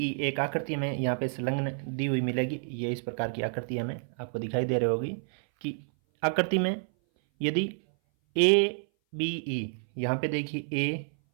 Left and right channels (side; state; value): left; silent; 58 dB below the other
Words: एक आकृति में यहाँ पे संलग्न दी हुई मिलेगी। ये इस प्रकार की आकृति हमें आपको दिखाई दे रही होगी कि आकृति में यदि ए बी ई, यहाँ पे देखिए ए,